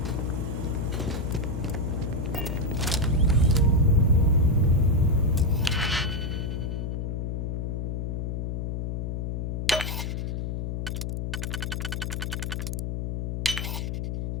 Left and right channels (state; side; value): noise; left; hum, 2 dB below the sound